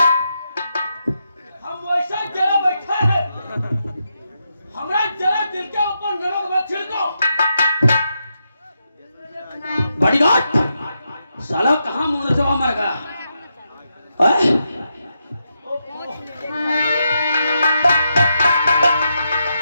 हम वैसा जरा बैठे हैं, हमरा जरा दिल के ऊपर नमक मत छिड़को। बॉडीगार्ड, साला कहाँ मुंह से मर गया?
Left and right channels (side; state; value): both; inverted; correlation -0.84